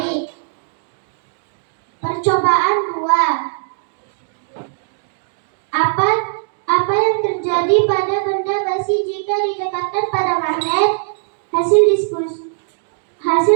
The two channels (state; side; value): silent; left; digital silence